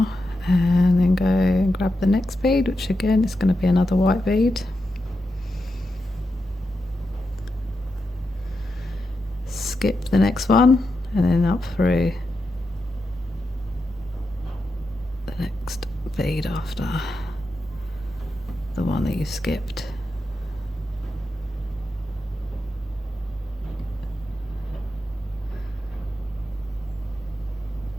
And then go and grab the next bead, which again is going to be another white bead. Skip the next one and then up through the next bead after the one that you skipped.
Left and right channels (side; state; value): both; normal; correlation 0.87